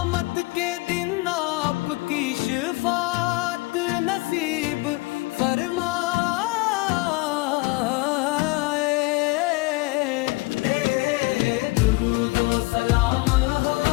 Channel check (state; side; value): quieter; right; 23.4 dB